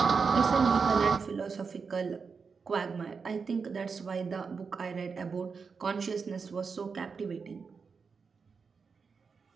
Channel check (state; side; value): quieter; left; 5.3 dB